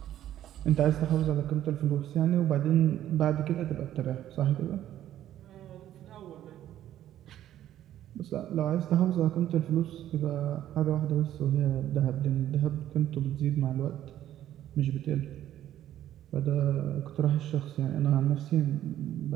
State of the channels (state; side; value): quieter; left; 12.1 dB